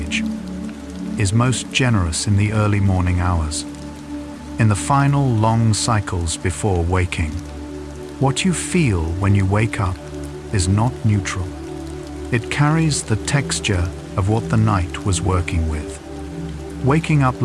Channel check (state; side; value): identical; both; correlation 1.00